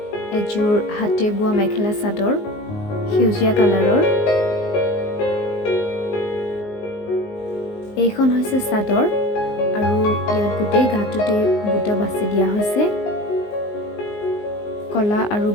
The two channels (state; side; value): late; right; 19 ms